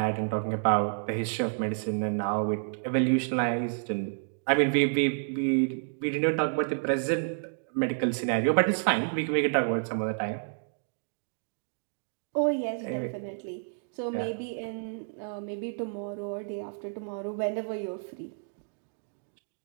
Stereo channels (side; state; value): left; silent; digital silence